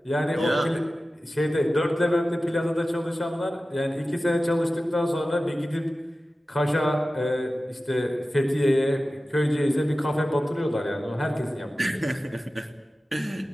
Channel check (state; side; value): normal; both; correlation 0.95